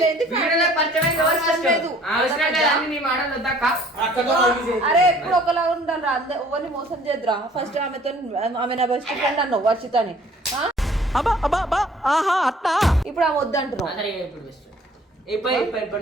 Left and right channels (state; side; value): normal; both; correlation 0.54